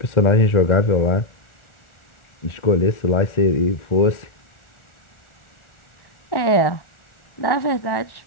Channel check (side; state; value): right; late; 1.4 ms